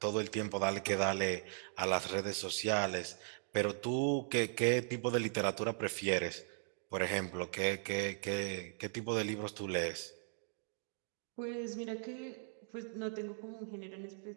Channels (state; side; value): silent; left; digital silence